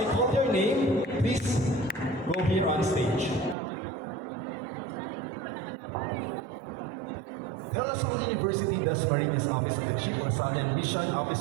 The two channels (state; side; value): drops out; left; at 3.6 s